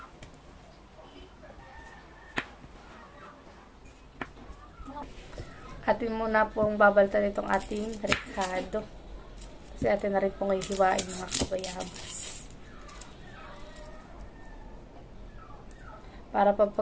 Atin muna pong babaltan itong ating rekado. Kasi atin na rin pong hihiwain mga kabayabas. Para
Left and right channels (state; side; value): identical; both; correlation 1.00